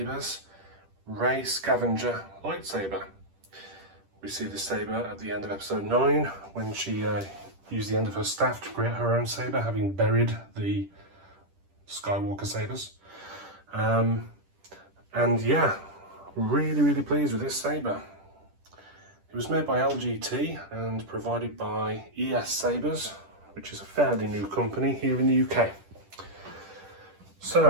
REY Scavenger Lightsaber. We see this saber at the end of episode 9 when she used the end of her staff to create her own saber, having buried the Skywalker sabers. And yeah, really pleased with this saber. It was made by LGT and provided by Sabers, which is a fairly new company here in the UK.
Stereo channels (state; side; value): late; left; 10 ms